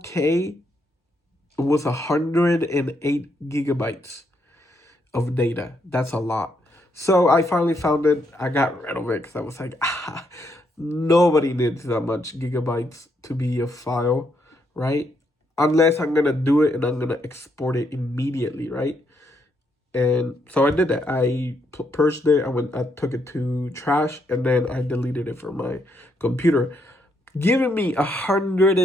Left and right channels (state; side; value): normal; both; correlation 0.76